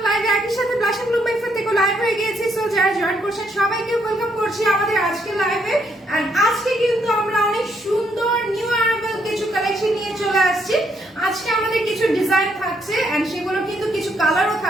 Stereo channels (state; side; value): normal; both; correlation 0.73